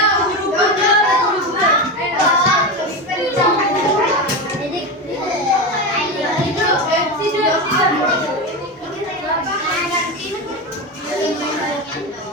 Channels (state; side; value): normal; both; correlation 0.19